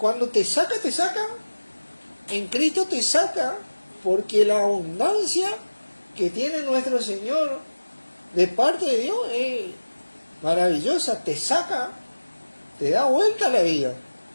te saca, en Cristo te saca, porque la abundancia que tiene nuestro Señor de parte de Dios es maravillosa, te saca, te da vuelta la vida.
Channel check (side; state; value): both; inverted; correlation -1.00